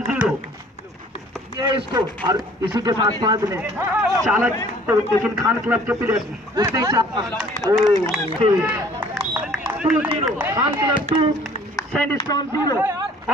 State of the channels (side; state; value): both; normal; correlation 0.54